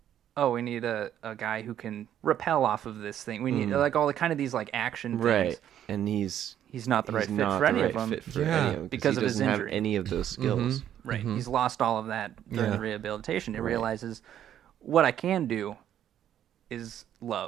oh, we need a guy who can rappel off of this thing. We need like all the kind of these like action things. Right. And he's not the right fit for any of them. Because of he his doesn't have injury. any of those skills. Right. He's lost all of that during Yeah. the rehabilitation. He realizes what I can do is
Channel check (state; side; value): quieter; left; 10.6 dB